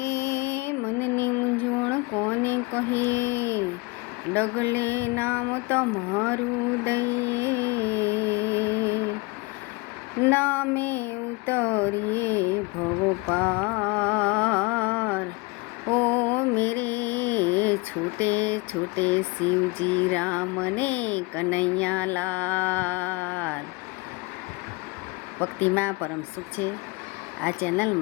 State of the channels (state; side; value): quieter; right; 25.6 dB